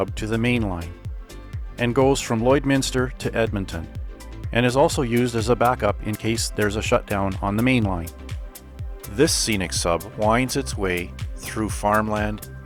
to the main line and goes from Lloydminster to Edmonton, and is also used as a backup in case there's a shutdown on the main line. This scenic sub winds its way through farmland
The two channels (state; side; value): identical; both; correlation 1.00